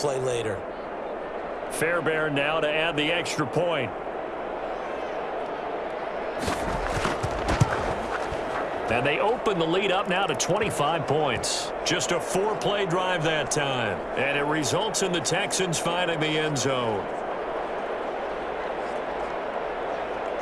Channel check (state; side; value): identical; both; correlation 1.00